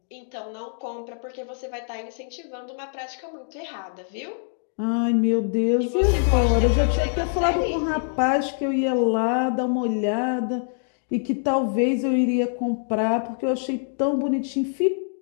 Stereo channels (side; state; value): right; silent; digital silence